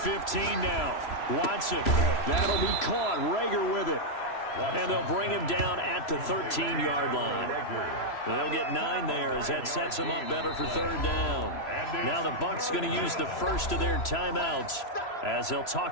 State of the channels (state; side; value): late; right; 3.0 ms